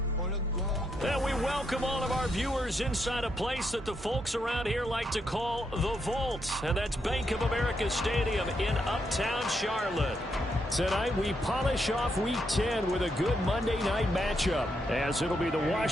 And we welcome all of our viewers inside a place that the folks around here like to call the Vault. And that's Bank of America Stadium in Uptown Charlotte. Tonight we polish off Week 10 with a good Monday night matchup, as it'll be the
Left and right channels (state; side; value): normal; both; correlation 0.80